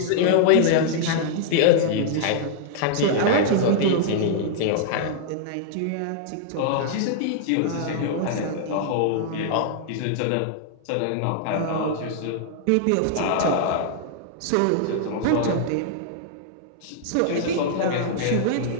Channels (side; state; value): both; different; correlation -0.01